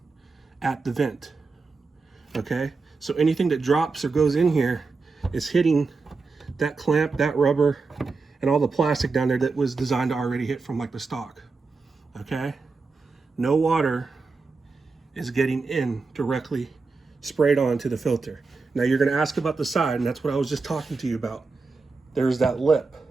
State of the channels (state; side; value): quieter; left; 4.2 dB